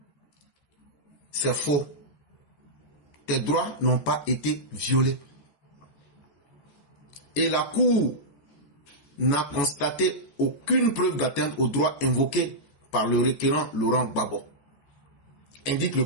C'est faux. Tes droits n'ont pas été violés. Et la Cour n'a constaté aucune preuve d'atteinte aux droits invoqués par le requérant Laurent Gbagbo, indique le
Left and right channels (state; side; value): late; right; 14 ms